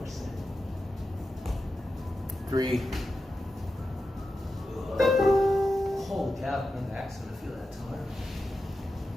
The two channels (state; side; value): normal; both; correlation 0.91